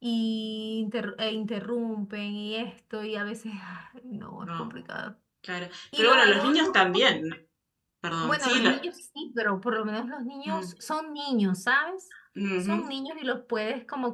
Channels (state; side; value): identical; both; correlation 1.00